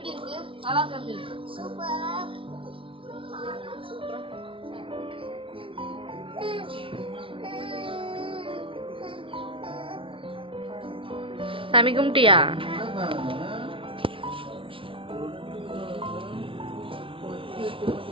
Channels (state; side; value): late; left; 0.25 ms